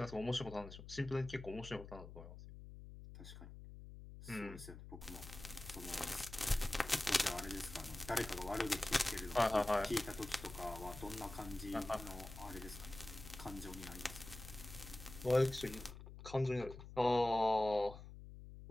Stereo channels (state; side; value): noise; left; hum, 13 dB below the sound